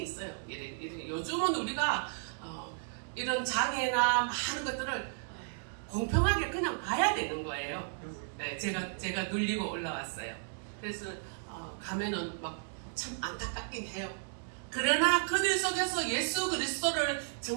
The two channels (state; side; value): silent; left; digital silence